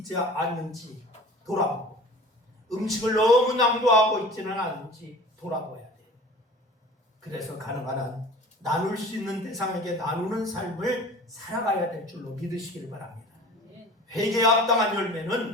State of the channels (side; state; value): both; normal; correlation 0.42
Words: 않는지 돌아보고 음식을 너무 낭비하고 있지는 않은지 돌아봐야 돼요. 그래서 가능한 한 나눌 수 있는 대상에게 나누는 삶을 살아가야 될 줄로 믿으시기를 바랍니다. 회개에 합당한